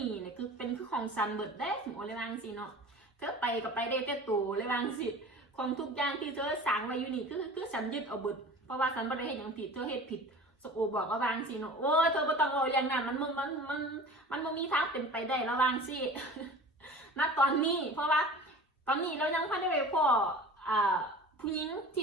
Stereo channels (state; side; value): normal; both; correlation 0.40